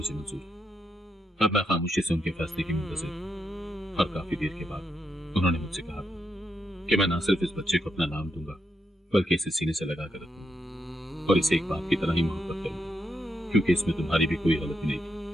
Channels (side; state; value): both; normal; correlation 0.82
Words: मंजूर है। अब मैं खामोशी से उनके फैसले की मुंतज़िर और काफी देर के बाद उन्होंने मुझसे कहा कि मैं ना सिर्फ इस बच्चे को अपना नाम दूंगा बल्कि इसे सीने से लगा कर रखूंगा और इसे एक बाप की तरह ही मोहब्बत करूंगा, क्योंकि इसमें तुम्हारी भी कोई गलती नहीं